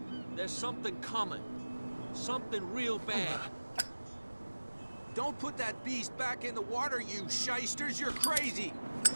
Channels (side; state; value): both; inverted; correlation -1.00